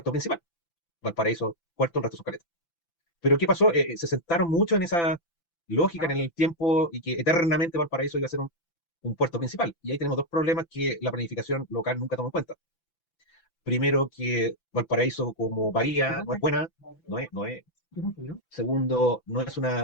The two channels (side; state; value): right; late; 5.9 ms